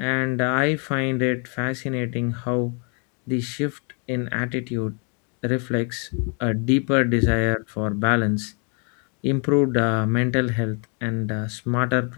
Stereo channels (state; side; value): quieter; right; 37.5 dB